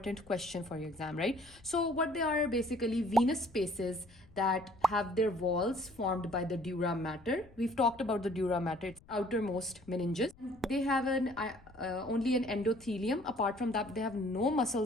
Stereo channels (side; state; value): left; noise; rumble, 25 dB below the sound